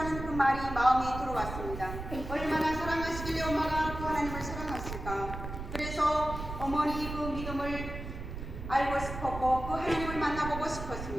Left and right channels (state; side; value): noise; right; rumble, 8 dB below the sound